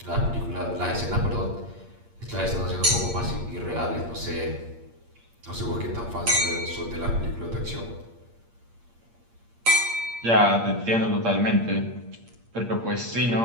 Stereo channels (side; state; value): left; late; 8.6 ms